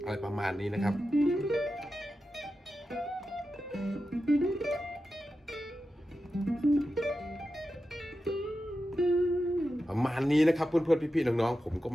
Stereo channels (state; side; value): normal; both; correlation 0.91